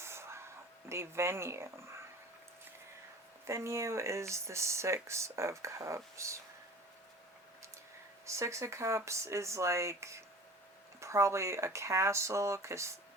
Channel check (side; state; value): both; normal; correlation 0.41